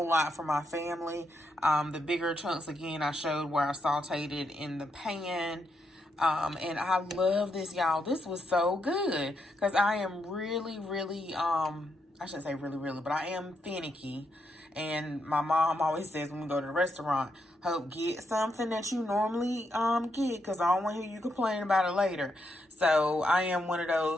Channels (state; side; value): normal; both; correlation 0.80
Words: lot for my family. The bigger chunks, again, I showed where I sauteed it in the pan. And I love this, y'all. This was so good because I am really, I shouldn't say really, but I am finicky. And my mom always says when we go to the restaurant, Hope, get something that you normally get because I don't want to hear you complain about it later. So I am one of